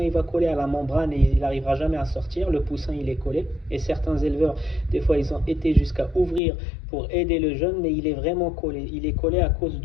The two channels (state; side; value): drops out; right; at 6.4 s